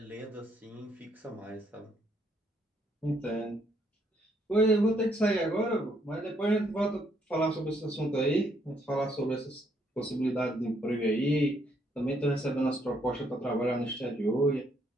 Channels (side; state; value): both; normal; correlation 0.71